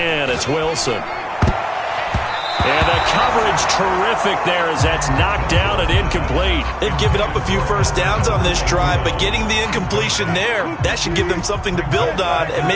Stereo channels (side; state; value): both; identical; correlation 1.00